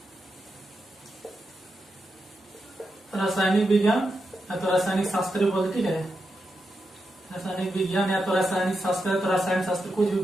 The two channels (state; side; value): normal; both; correlation 0.87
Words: रासायनिक विज्ञान या तो रासायनिक शास्त्र बोलते। ठीक है, रासायनिक विज्ञान या तो रासायनिक शास्त्र या तो रासायनिक शास्त्र, कुछ भी